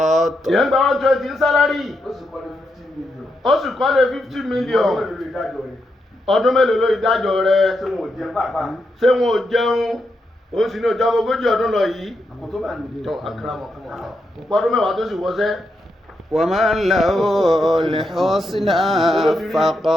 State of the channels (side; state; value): both; normal; correlation 0.83